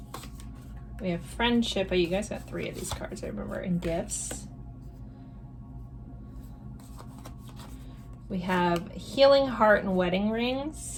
We have friendship. Oh, you guys got 3 of these cards, I remember, and gifts. We have healing heart and wedding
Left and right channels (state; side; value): identical; both; correlation 1.00